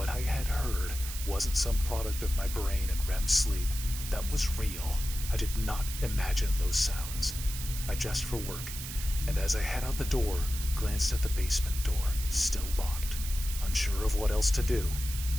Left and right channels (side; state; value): right; noise; hiss, 8 dB below the sound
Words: I had heard wasn't some product of my brain and REM sleep. That was real. I did not imagine those sounds. I dressed for work, and as I head out the door, glanced at the basement door, still locked. Unsure of what else to do,